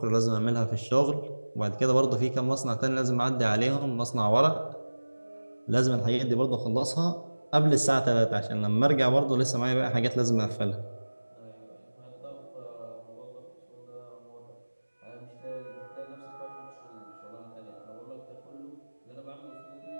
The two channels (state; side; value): inverted; both; correlation -1.00